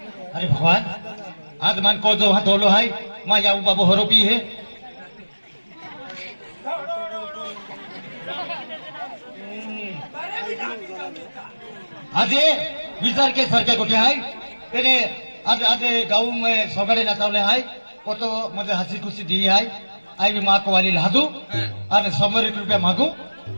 अरे भगवान आज मान को जो वहां धोलो है मां याऊ बाबू होरो पी है आज ये विचार के सर के गोटे है तेरे आज आज गाँव में सगड़े नचावले है वो तो मुझे हंसी खुशी दी है आई भी माँ को वाली लादू और 100 रुपया मांगू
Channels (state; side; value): inverted; both; correlation -1.00